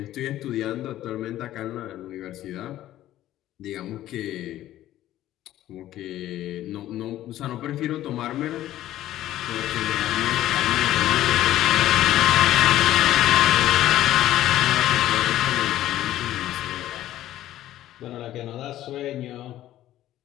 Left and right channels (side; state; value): right; quieter; 13.7 dB